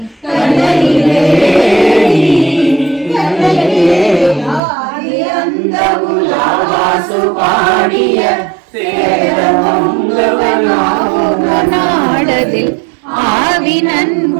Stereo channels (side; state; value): left; drops out; at 4.6 s